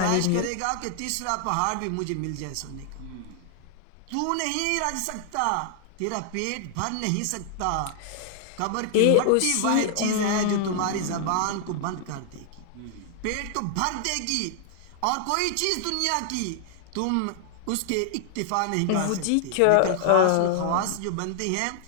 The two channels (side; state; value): both; different; correlation 0.00